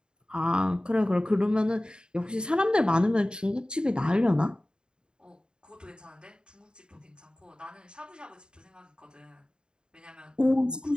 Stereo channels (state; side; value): late; left; 0.049 ms